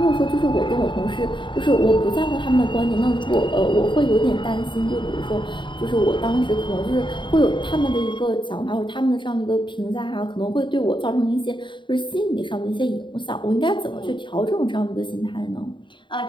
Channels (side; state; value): right; late; 0.23 ms